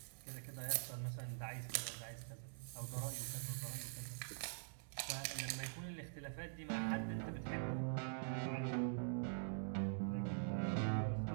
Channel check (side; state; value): left; silent; digital silence